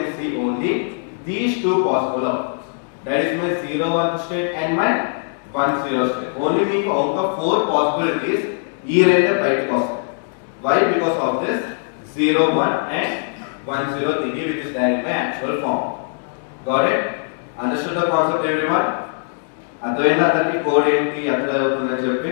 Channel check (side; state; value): right; silent; 65 dB below the other